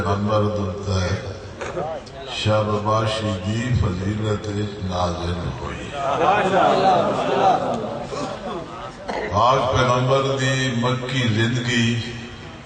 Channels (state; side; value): identical; both; correlation 1.00